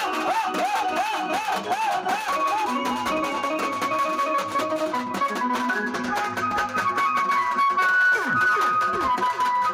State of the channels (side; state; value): both; identical; correlation 1.00